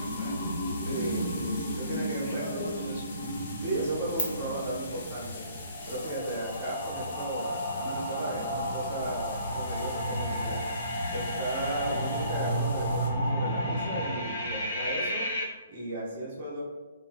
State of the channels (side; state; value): both; inverted; correlation -0.58